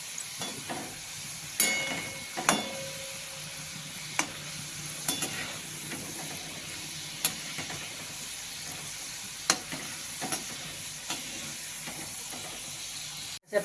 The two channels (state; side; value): identical; both; correlation 1.00